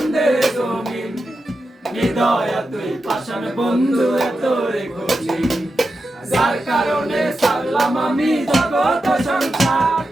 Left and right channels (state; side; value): normal; both; correlation 0.89